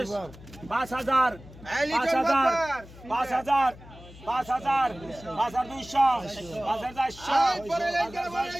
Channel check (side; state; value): left; noise; hum, 19 dB below the sound